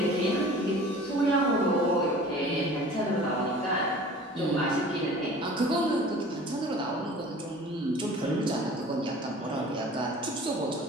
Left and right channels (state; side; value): normal; both; correlation 0.44